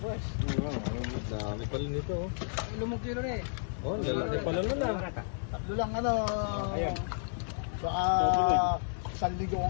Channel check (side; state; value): right; silent; digital silence